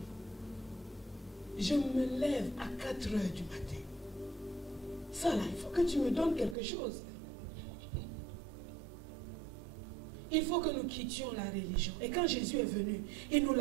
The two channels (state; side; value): drops out; left; at 6.6 s